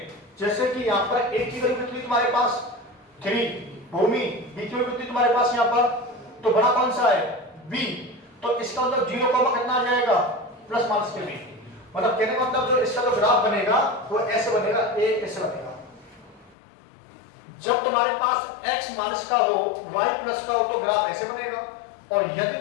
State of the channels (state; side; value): drops out; right; at 16.6 s